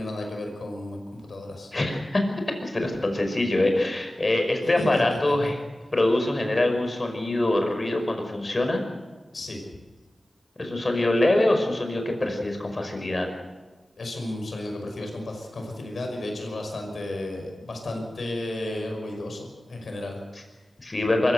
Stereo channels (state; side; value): normal; both; correlation 0.96